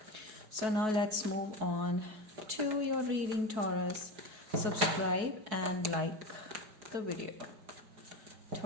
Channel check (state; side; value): late; left; 4.6 ms